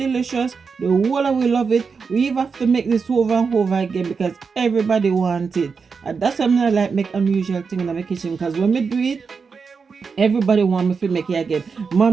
The whole of we love it. We even have to make this over and over again because everybody wants it. And that's why I like make unusual thing in my kitchen because when we do it, everybody want me to make it again.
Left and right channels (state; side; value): quieter; left; 5.3 dB